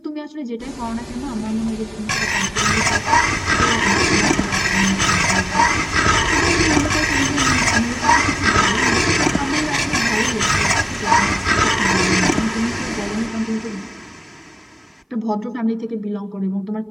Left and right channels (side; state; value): both; identical; correlation 1.00